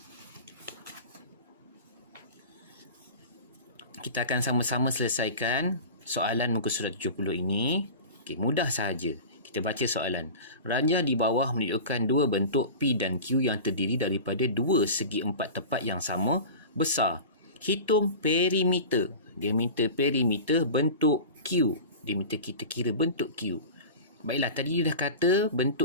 Kita akan sama-sama selesaikan soalan muka surat 70 ini. Okey, mudah sahaja. Kita baca soalan. Ranjah di bawah menunjukkan dua bentuk P dan Q yang terdiri daripada dua segi empat tepat yang sama besar. Hitung perimeter. Dia minta perimeter bentuk Q. Dia minta kita kira bentuk Q. Baiklah, tadi dia dah kata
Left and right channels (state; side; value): inverted; both; correlation -0.33